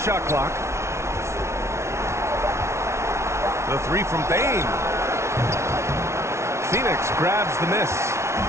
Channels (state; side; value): late; left; 0.13 ms